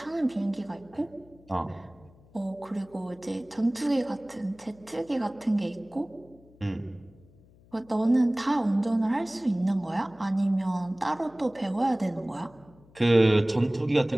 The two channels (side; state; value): left; noise; hum, 27 dB below the sound